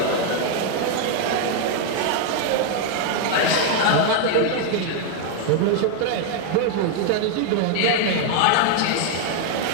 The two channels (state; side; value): different; both; correlation 0.00